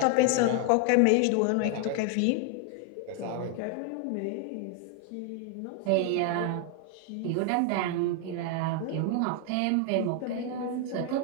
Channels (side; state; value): both; different; correlation 0.00